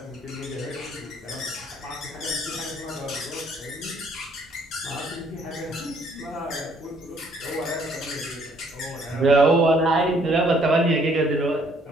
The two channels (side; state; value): both; normal; correlation 0.64